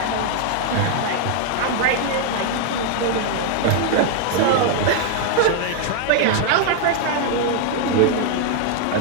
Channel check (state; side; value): different; both; correlation 0.00